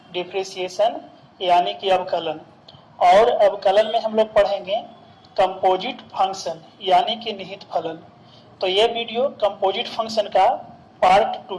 डिप्रिसिएशन यानी कि अवकलन। और अवकलन में हम लोग पढ़ेंगे कंपोजिट फंक्शन यानी कि निहित फलन। तो ये वीडियो कंपोजिट फंक्शन का पार्ट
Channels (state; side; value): identical; both; correlation 1.00